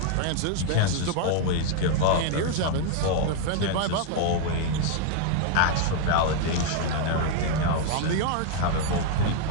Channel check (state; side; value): different; both; correlation 0.00